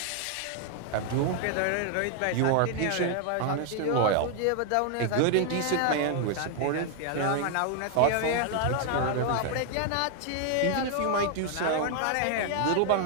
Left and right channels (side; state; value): both; different; correlation 0.00